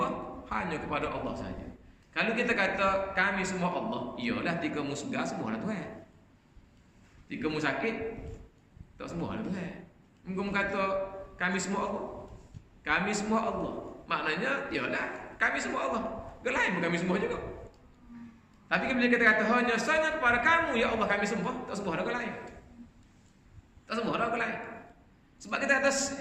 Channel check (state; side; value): identical; both; correlation 1.00